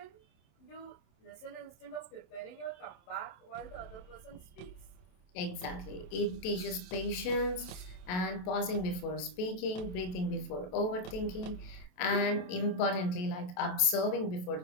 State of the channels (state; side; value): late; right; 27 ms